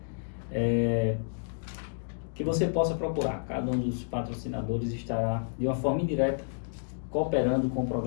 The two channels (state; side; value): silent; right; digital silence